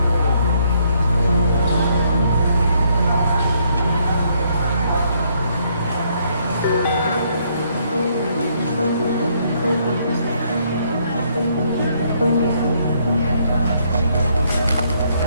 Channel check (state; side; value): inverted; both; correlation -0.70